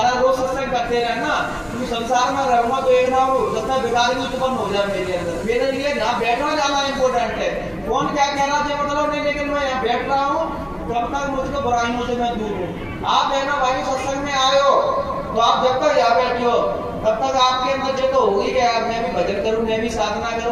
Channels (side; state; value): both; identical; correlation 1.00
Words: रोज सत्संग करते रहे ना, क्योंकि संसार में रहूंगा तो एक ना हो जब तक बेकारी उत्पन्न हो जाए मेरे अंदर। मेरे लिए यहाँ बैठना जाना इम्पोर्टेंट है, कौन क्या कहना चाहिए मतलब नहीं, लेकिन मैं यहाँ बैठ रहा हूँ तब तक मुझको बुराइयों से मैं दूर हूँ। आप बहनों भाई सत्संग में आए हो तो आप जब तक यहाँ बैठे हो तब तक आपके अंदर जो तो हो ही गया, मैं भी भजन करूँ, मैं भी साधना